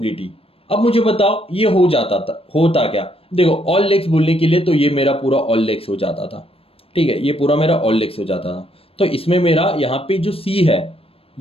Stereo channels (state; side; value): late; right; 0.28 ms